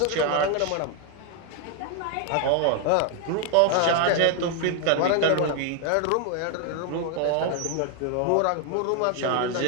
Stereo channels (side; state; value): both; different; correlation 0.01